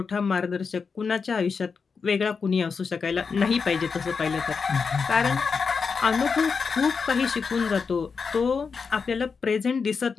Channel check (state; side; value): quieter; right; 5.4 dB